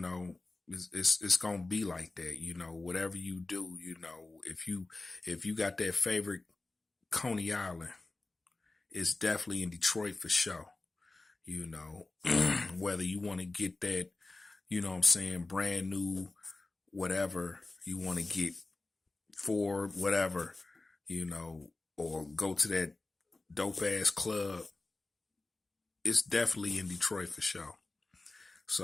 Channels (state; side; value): quieter; right; 3.2 dB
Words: it's gonna be like that, whatever you do, if you got that favorite Coney Island, it's definitely in Detroit for sure. Whether you want to get that, what I'm saying, brand new, whatever you want to get for whatever, or go to that dope ass club, it's definitely in Detroit for sure.